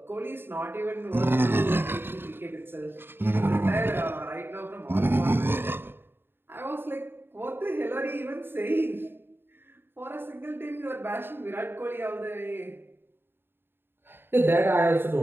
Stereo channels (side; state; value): left; late; 0.10 ms